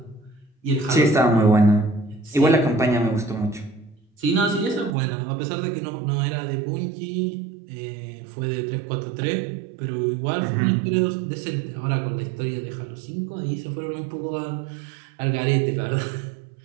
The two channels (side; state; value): left; drops out; at 5.0 s